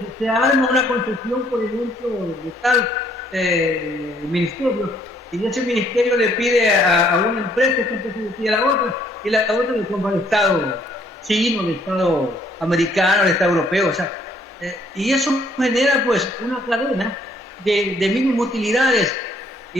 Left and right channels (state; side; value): normal; both; correlation 0.65